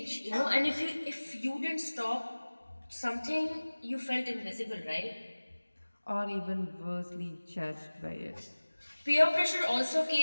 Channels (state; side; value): inverted; both; correlation -1.00